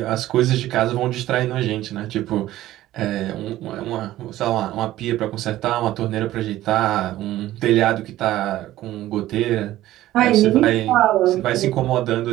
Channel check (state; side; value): quieter; left; 14.8 dB